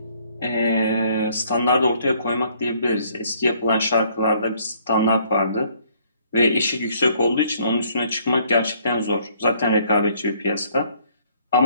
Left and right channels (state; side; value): inverted; both; correlation -0.63